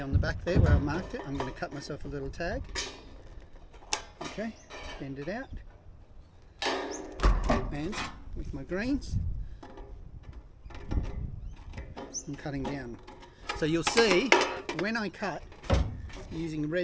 on the back there where I've marked it, I'm going to cut myself a little tag. Okay, bend it out. And with my greens, I'm cutting down. So you'll see when I cut using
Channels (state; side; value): identical; both; correlation 1.00